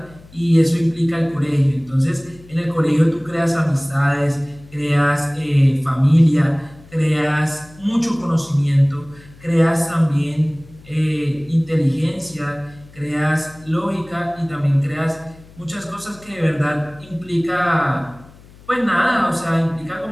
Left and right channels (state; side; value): noise; left; hum, 23 dB below the sound